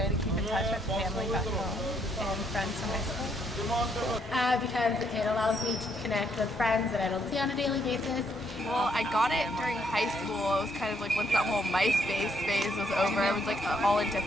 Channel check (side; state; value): both; normal; correlation 0.72